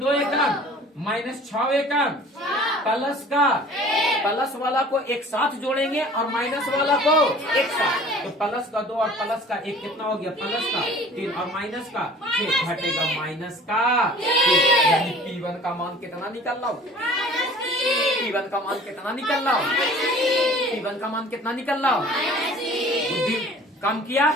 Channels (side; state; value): both; normal; correlation 0.47